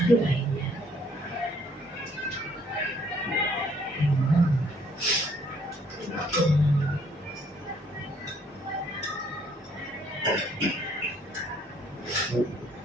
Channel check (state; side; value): normal; both; correlation 0.64